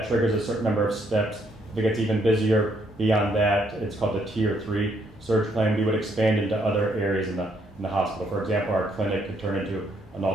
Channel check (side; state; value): both; normal; correlation 0.71